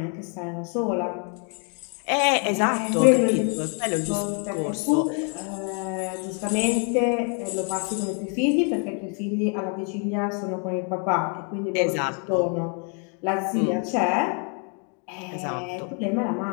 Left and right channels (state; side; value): quieter; right; 38.5 dB